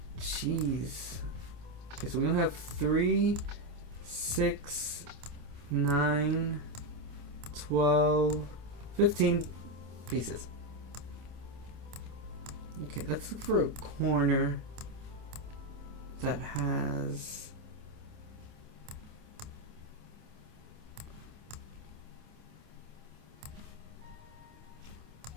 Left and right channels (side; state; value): left; late; 26 ms